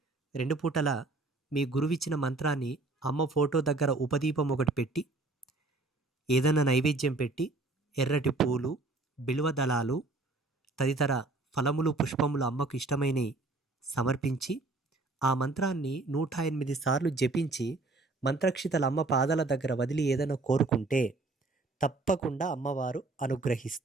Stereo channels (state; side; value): quieter; left; 3.2 dB